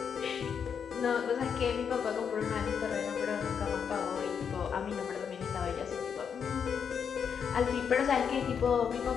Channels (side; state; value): right; quieter; 7.1 dB